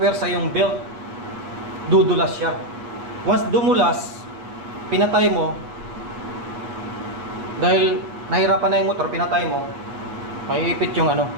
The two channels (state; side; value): late; left; 8.1 ms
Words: yung belt, dudulas siya. Once dumulas, pinatay mo, dahil nahirapan na yung motor, pinatay mo, maiipit yung